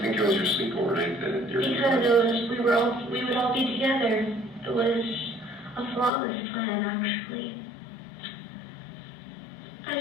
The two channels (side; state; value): right; drops out; at 6.1 s